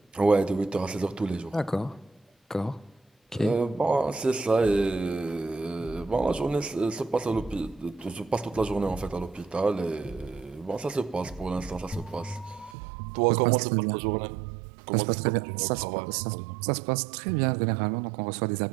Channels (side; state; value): left; drops out; at 12.8 s